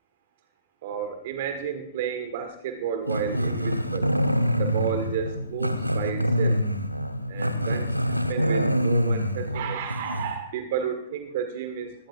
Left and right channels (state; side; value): inverted; both; correlation -0.70